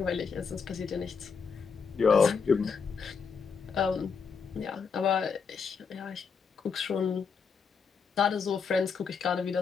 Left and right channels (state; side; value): quieter; right; 5.7 dB